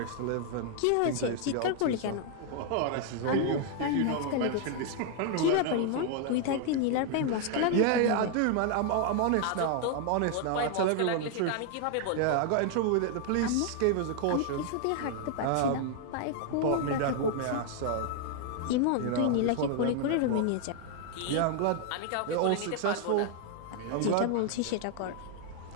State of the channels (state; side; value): different; both; correlation 0.00